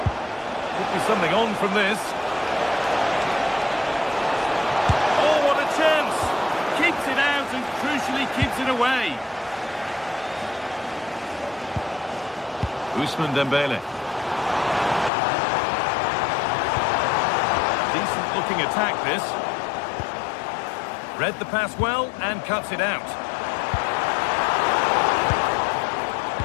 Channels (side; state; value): right; drops out; at 15.1 s